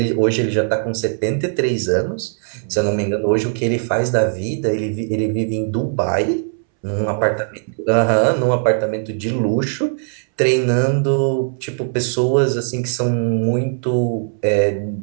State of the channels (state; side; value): silent; left; 66 dB below the other